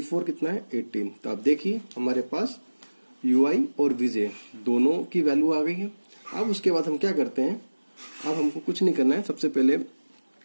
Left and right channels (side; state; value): both; inverted; correlation -1.00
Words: कितना है 18। तो आप देखिए हमारे पास UI और VJ दोनों की वैल्यू आ गई है। अब उसके बाद हम क्या करते हैं, अब हमको कुछ नहीं करना है। सबसे पहले